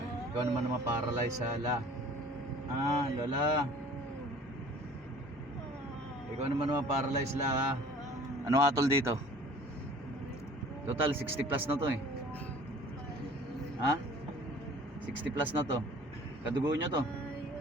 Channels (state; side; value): normal; both; correlation 0.48